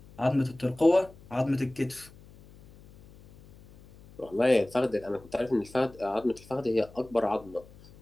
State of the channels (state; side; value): noise; left; hum, 23 dB below the sound